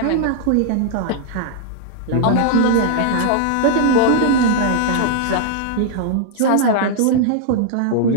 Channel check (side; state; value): both; different; correlation -0.01